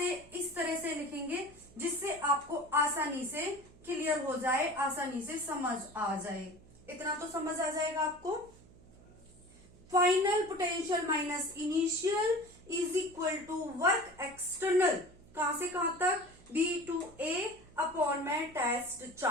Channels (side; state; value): right; noise; hum, 24 dB below the sound